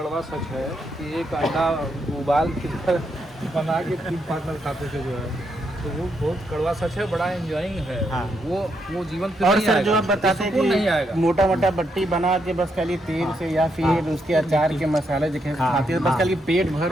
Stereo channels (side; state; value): both; normal; correlation 0.79